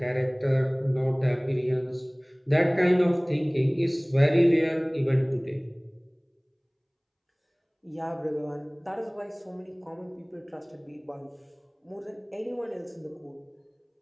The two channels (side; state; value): both; identical; correlation 1.00